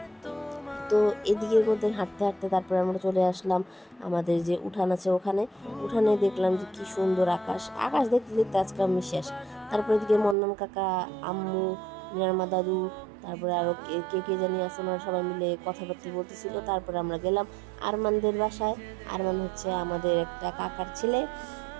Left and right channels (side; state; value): left; drops out; at 10.4 s